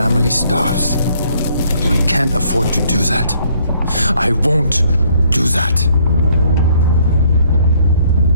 starves. I can't afford to do that. I won't do that.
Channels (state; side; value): inverted; both; correlation -0.64